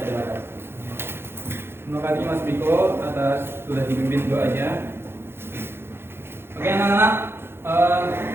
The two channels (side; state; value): left; late; 0.11 ms